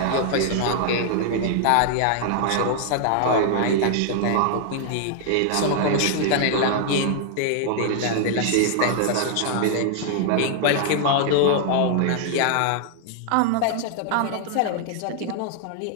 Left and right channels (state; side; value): different; both; correlation 0.00